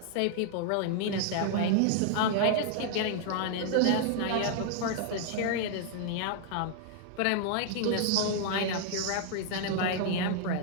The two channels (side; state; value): both; different; correlation -0.01